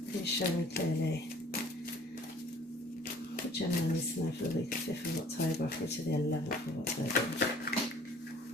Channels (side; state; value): both; normal; correlation 0.53